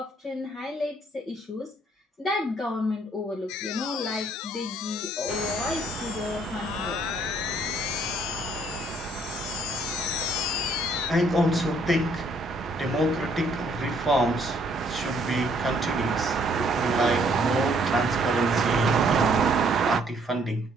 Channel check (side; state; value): both; normal; correlation 0.65